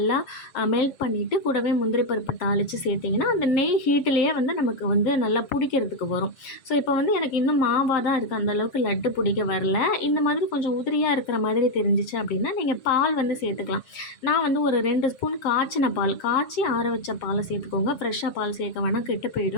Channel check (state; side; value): late; right; 7.4 ms